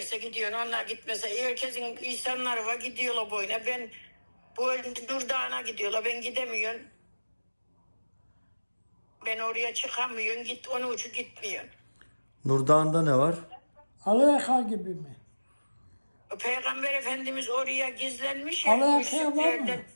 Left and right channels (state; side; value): inverted; both; correlation -1.00